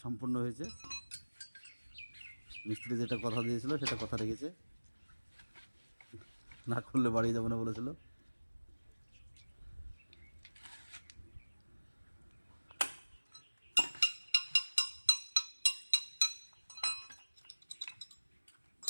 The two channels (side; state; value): both; inverted; correlation -1.00